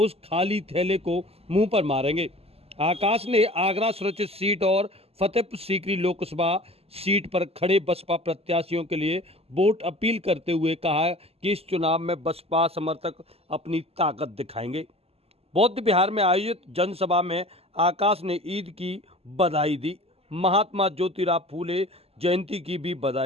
खाली थैले को मुंह पर मारेंगे। आकाश ने आगरा सुरक्षित सीट और फतेहपुर सीकरी लोकसभा सीट पर खड़े बसपा प्रत्याशियों के लिए वोट अपील करते हुए कहा कि इस चुनाव में बसपा समर्थक अपनी ताकत दिखाएंगे। बौद्ध विहार में आयोजित जनसभा में आकाश ने ईद की बधाई दी, महात्मा ज्योतिराव फूले जयंती की भी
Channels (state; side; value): late; left; 0.29 ms